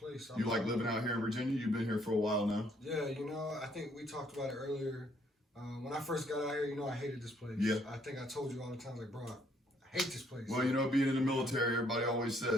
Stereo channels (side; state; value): both; normal; correlation 0.67